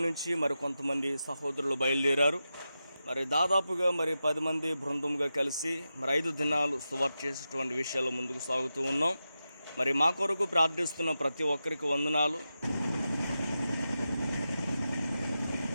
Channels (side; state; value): both; inverted; correlation -0.91